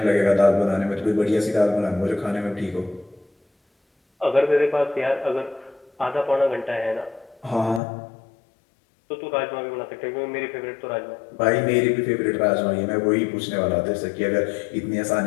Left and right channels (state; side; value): drops out; right; at 7.8 s